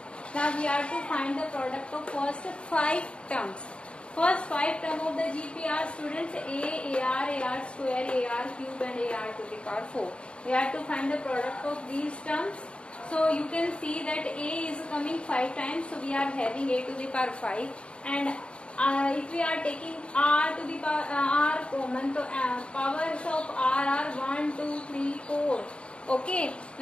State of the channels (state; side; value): late; right; 0.056 ms